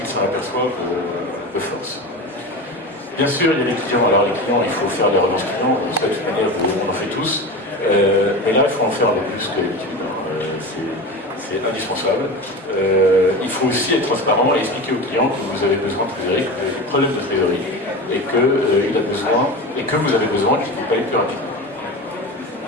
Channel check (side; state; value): both; normal; correlation 0.27